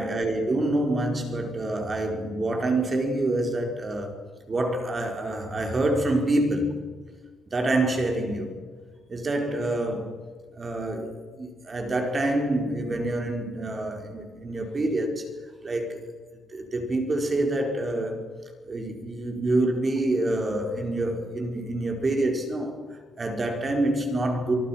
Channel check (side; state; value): both; normal; correlation 0.81